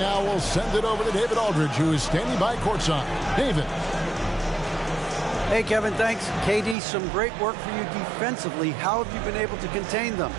we'll send it over to David Aldridge, who is standing by courtside. David. Hey, Kevin, thanks. KD, some great work for you defensively. How have you been able to contain them?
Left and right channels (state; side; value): drops out; left; at 6.8 s